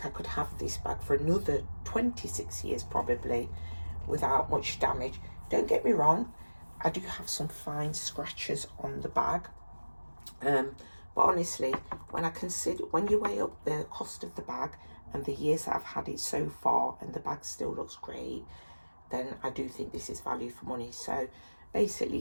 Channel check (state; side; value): inverted; both; correlation -1.00